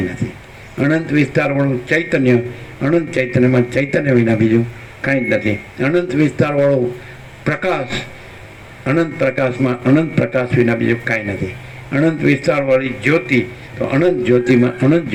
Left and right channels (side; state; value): both; identical; correlation 1.00